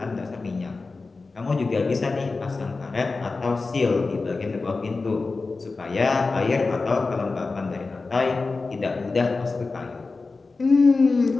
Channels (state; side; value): quieter; right; 3.9 dB